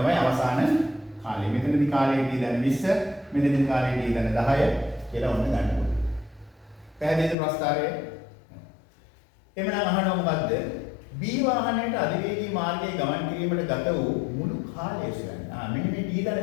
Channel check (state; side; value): drops out; right; at 7.4 s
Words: අවසාන කාලය. මෙතනදී කාලය t ධන 20, මෙතනදී කාලය t ධන 10 කියලා ඔන්න ගන්න ඕනේ. පැහැදිලිද ප්‍රස්ථාරය? එමනම් අහනවා මොකද්ද? B වාහනයට අධිවේගී මාර්ගයේ ගමන් කිරීමට ගත වූ මුළු කාලය සොයන්න. මෙන්න මේ t ධන